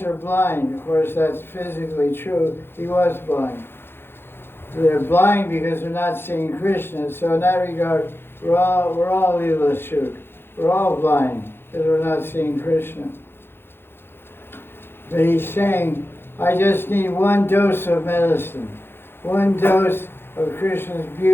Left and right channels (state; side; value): late; right; 0.11 ms